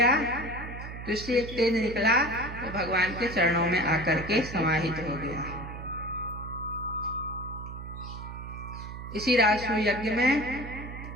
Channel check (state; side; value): noise; right; hum, 10 dB below the sound